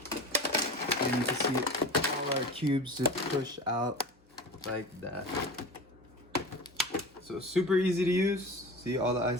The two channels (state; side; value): normal; both; correlation 0.33